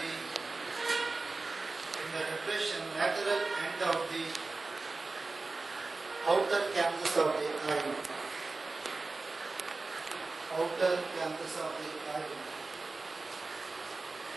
lateral end of the outer canthus of the eye. Outer canthus of the eye.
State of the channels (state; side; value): quieter; left; 3.6 dB